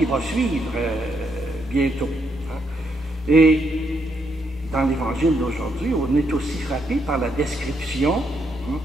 va suivre bientôt. Et dans l'Évangile d'aujourd'hui, on est aussi frappé par la description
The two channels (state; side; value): normal; both; correlation 0.77